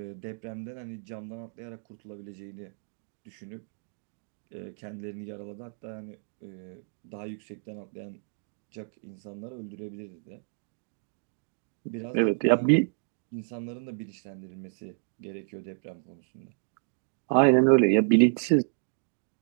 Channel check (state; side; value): silent; left; 57 dB below the other